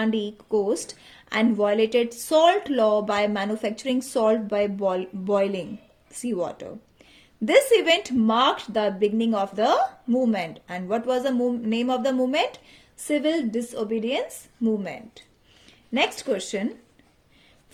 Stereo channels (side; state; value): both; identical; correlation 1.00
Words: coast and violated salt law by manufacturing salt by boiling seawater. This event marked the beginning of the movement. And what was the name of the movement? Civil Disobedience Movement. Next question.